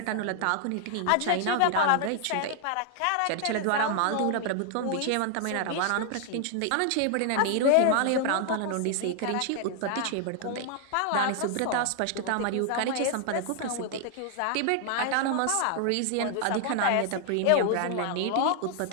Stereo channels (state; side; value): different; both; correlation 0.00